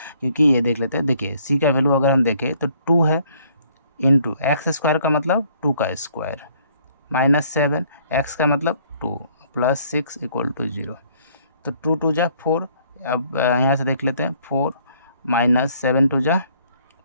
क्योंकि ये देख लेते हैं। देखिए सी का वैल्यू अगर हम देखें तो 2 है, इंटू एक्स स्क्वायर का मतलब 2 का स्क्वायर, -7 एक्स का मतलब 2 प्लस 6 इक्वल टू 0। तो 2 2 जा 4, अब यहाँ से देख लेते हैं 4 -7 2 जा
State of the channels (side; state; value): both; inverted; correlation -0.62